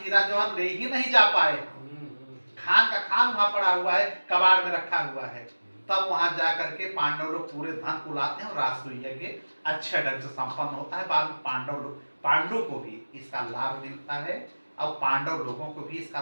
हीरा जवाहर ले ही नहीं जा पाए। खान का खान वहां पड़ा हुआ है, कबाड़ में रखा हुआ है। तब वहां जाकर के पांडव लोग पूरे धन को लाते हैं और राजसूय यज्ञ अच्छे ढंग से संपन्न होता है। बाद में पांडव को भी इसका लाभ मिलता है और पांडव लोगों को भी इसका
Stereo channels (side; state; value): both; inverted; correlation -1.00